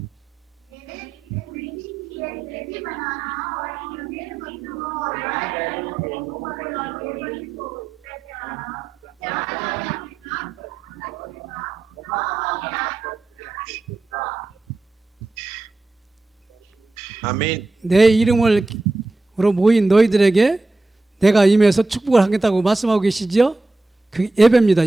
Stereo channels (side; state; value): left; quieter; 3.2 dB